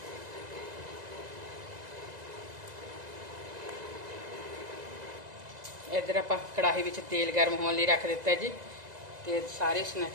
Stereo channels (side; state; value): left; late; 2.0 ms